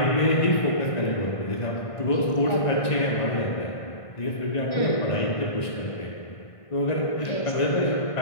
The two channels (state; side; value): late; right; 1.5 ms